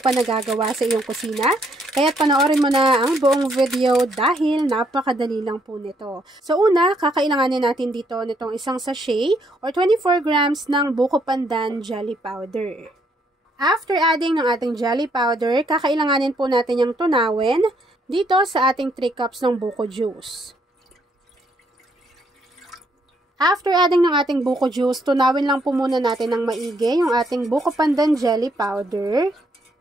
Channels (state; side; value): normal; both; correlation 0.71